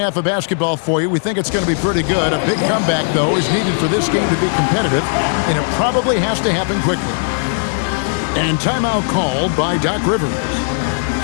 of basketball for you. We think it's going to be pretty good. A big comeback, though, is needed for this game to be competitive, and it probably has to happen quickly. And timeout called by Doc Rivers.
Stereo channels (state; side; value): silent; right; digital silence